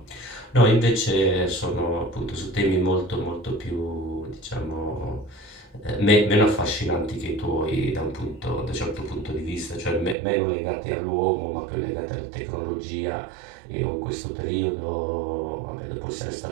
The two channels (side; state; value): left; drops out; at 10.2 s